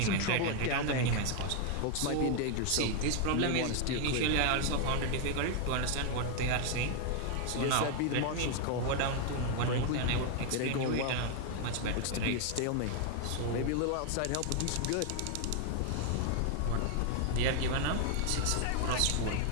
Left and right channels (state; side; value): different; both; correlation 0.00